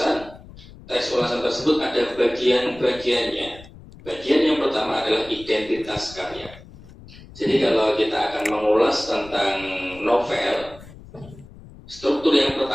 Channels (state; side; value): noise; left; rumble, 19 dB below the sound